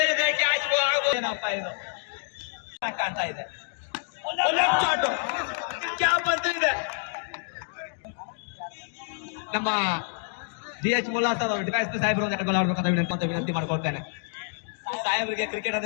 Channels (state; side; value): silent; right; 60 dB below the other